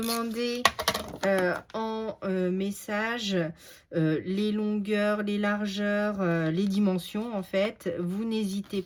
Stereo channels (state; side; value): identical; both; correlation 1.00